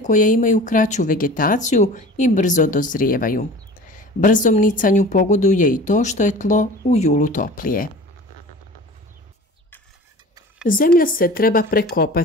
imaju kraću vegetaciju i brzo dozrijevaju. Brzom nicanju pogoduje i to što je tlo u julu toplije. Zemlja se treba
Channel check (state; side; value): normal; both; correlation 0.40